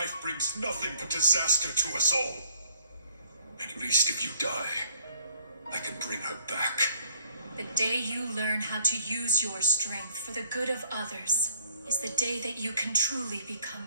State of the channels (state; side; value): inverted; both; correlation -0.60